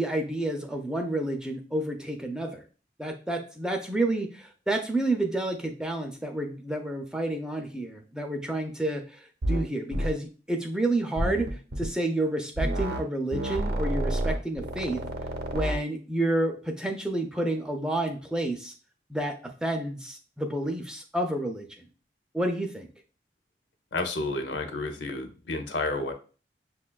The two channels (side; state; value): both; normal; correlation 0.72